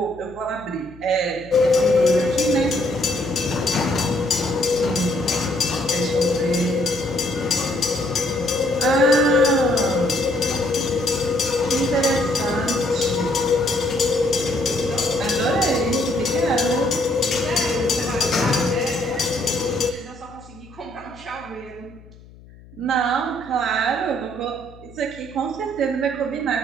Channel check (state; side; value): noise; left; hum, 22 dB below the sound